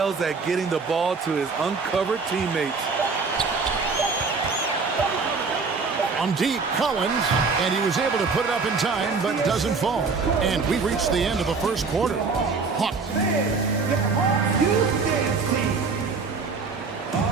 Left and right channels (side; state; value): left; quieter; 4.7 dB